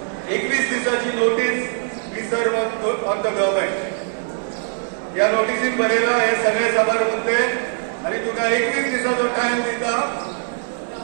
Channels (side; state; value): left; silent; 63 dB below the other